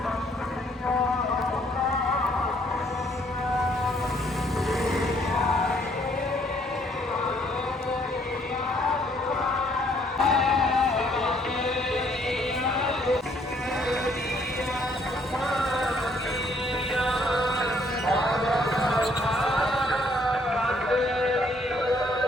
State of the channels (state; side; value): normal; both; correlation 0.65